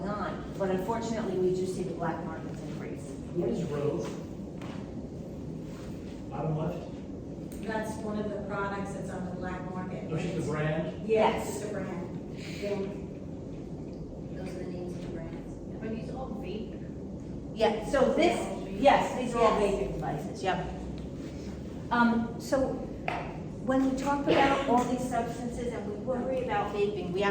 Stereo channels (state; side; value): identical; both; correlation 1.00